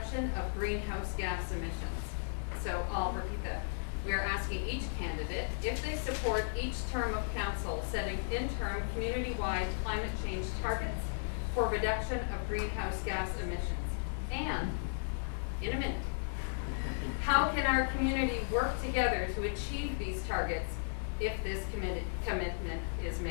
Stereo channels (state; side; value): silent; right; digital silence